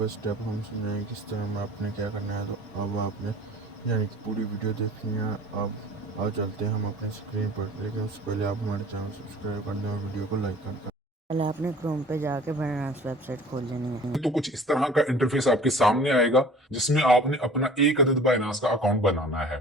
स्टेप हम समझाएंगे किस तरह में आपने क्या करना है। तो अब आपने यानी कि पूरी वीडियो देखनी है। अब चलते हैं हम अपने स्क्रीन पर, लेकिन उससे पहले आप हमारे चैनल सब्सक्राइब कर दें और वीडियो को लाइक कर दें। पहले आपने क्रोम पे जाके बाइनांस वेबसाइट खोल लेनी है। तो कुछ इस तरह का इंटरफेस आपके सामने आएगा जिसमें आपने अपना एक अदद बाइनांस का अकाउंट बनाना है।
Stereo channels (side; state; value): both; normal; correlation 0.46